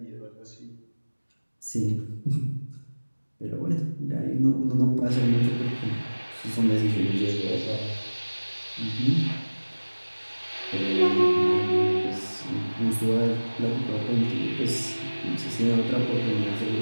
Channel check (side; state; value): both; inverted; correlation -1.00